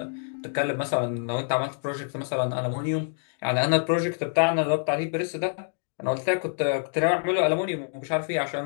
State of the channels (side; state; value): right; silent; 61 dB below the other